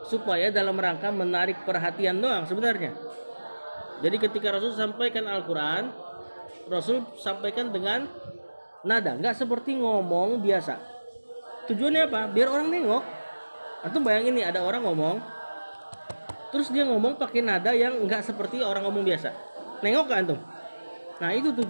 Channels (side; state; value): both; inverted; correlation -1.00